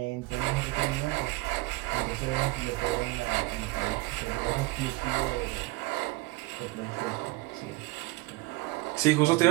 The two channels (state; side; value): quieter; left; 21.8 dB